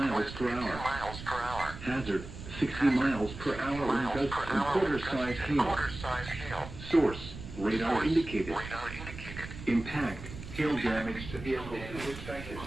per hour. Hazard, 60 miles per hour in gusts and quarter-size hail. Source, radar indicated. Impact, hail damage to vehicles is expected.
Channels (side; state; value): right; noise; rumble, 11 dB below the sound